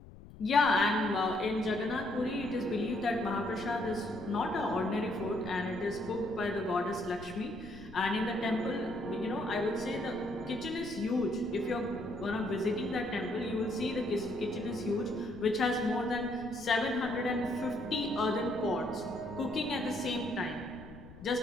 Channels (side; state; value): left; noise; rumble, 17 dB below the sound